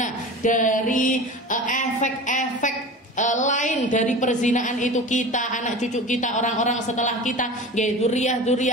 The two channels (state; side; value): normal; both; correlation 0.34